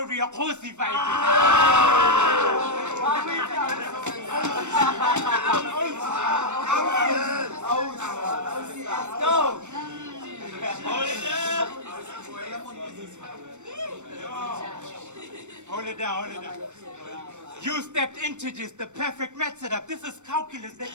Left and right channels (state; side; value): late; left; 0.84 ms